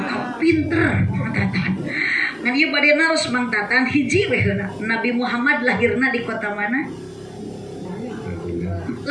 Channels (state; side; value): noise; left; hum, 30 dB below the sound